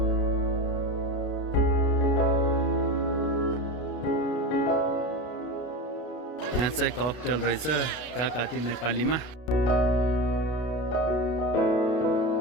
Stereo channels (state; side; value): late; right; 32 ms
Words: यहाँ चाहिँ ककटेल रहेछ काकाती नेपालीमा